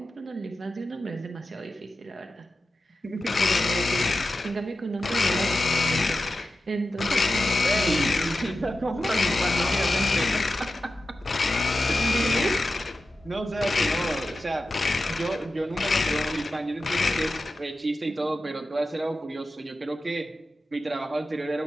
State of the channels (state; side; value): normal; both; correlation 0.92